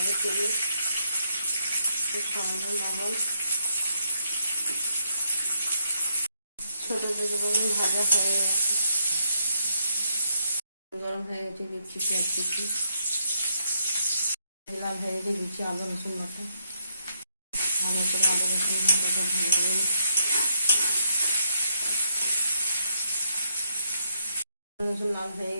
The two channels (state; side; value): inverted; both; correlation -0.76